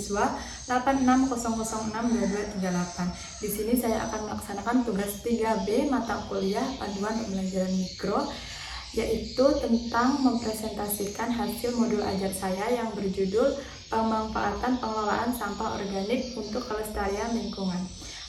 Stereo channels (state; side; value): identical; both; correlation 1.00